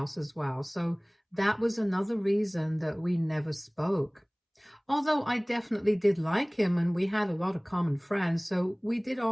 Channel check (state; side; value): identical; both; correlation 1.00